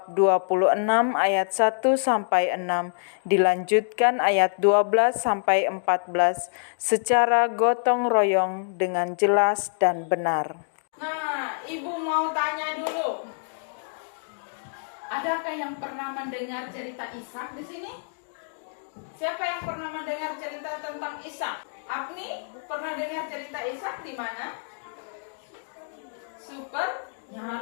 26 ayat 1 sampai 6 dilanjutkan ayat 12 sampai 14 secara gotong royong dengan jelas dan benar. Nah, Ibu mau tanya dulu. Adakah yang pernah mendengar cerita Ishak di sini? Siapa yang pernah mendengar cerita tentang Ishak? Apni pernah dengar cerita Ishak di mana? Super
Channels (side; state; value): right; silent; digital silence